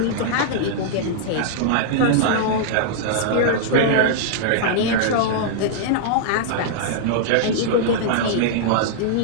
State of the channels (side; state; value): both; different; correlation -0.02